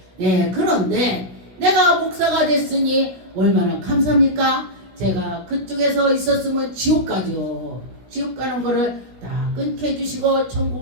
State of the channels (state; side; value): late; left; 16 ms